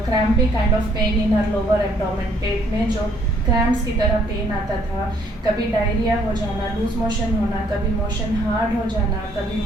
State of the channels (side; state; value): both; normal; correlation 0.65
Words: crampy kind of pain in her lower abdomen. पेट में जो cramps की तरह pen आता था, कभी डायरिया हो जाना, लूज मोशन होना, कभी मोशन हार्ड हो जाना, कभी